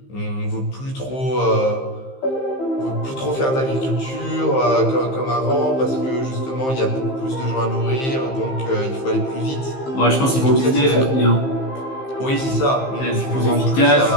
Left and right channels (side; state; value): right; late; 15 ms